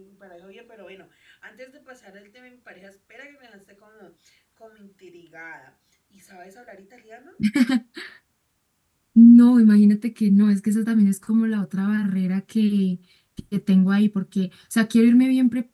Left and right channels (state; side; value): identical; both; correlation 1.00